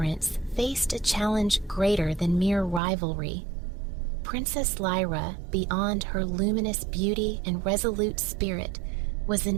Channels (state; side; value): drops out; left; at 2.8 s